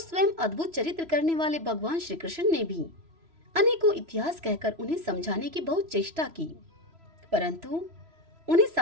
अद्भुत चरित्र करने वाले भगवान श्री कृष्ण ने भी अनेकों इतिहास कहकर उन्हें समझाने की बहुत चेष्टा की, परंतु उन्हें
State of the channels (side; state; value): left; late; 3.0 ms